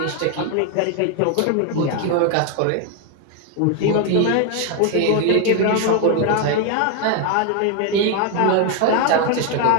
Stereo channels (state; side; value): different; both; correlation 0.01